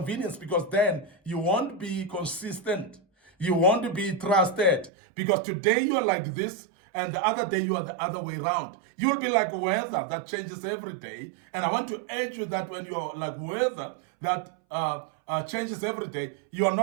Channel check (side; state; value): left; drops out; at 4.9 s